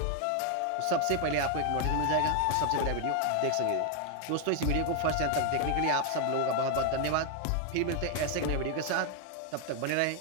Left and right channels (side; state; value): both; different; correlation 0.00